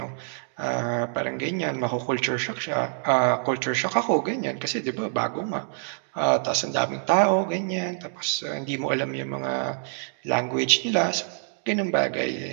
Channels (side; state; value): left; silent; 59 dB below the other